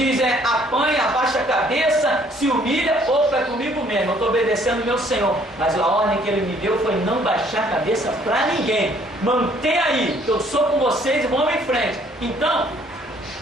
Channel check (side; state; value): both; normal; correlation 0.62